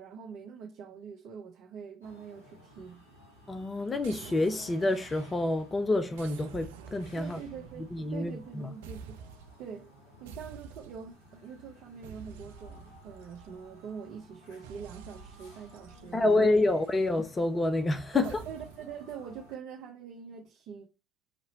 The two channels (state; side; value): normal; both; correlation 0.84